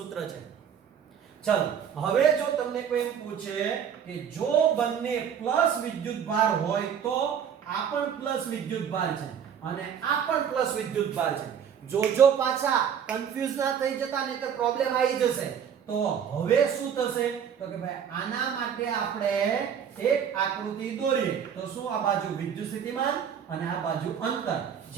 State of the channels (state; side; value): quieter; left; 8.1 dB